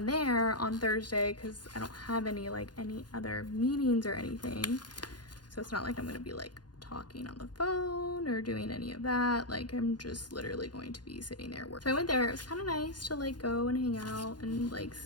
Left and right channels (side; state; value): right; late; 0.70 ms